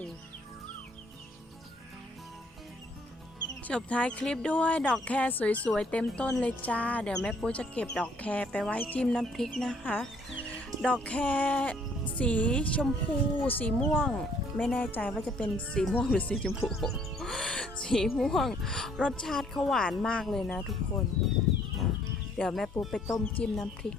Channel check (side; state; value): both; normal; correlation 0.63